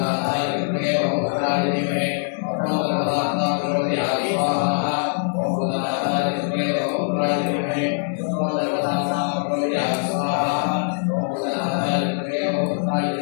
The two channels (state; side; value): silent; right; digital silence